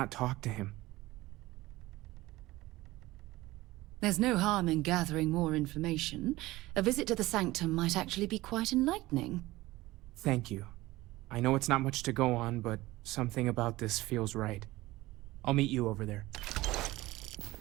talk to him? There's no harm in gathering more information. A visit to the Sanctum might actually be quite enlightening. Thank you. I know it's not much to go on, but something about this feels right. I'll meet you over there.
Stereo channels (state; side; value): quieter; left; 18.6 dB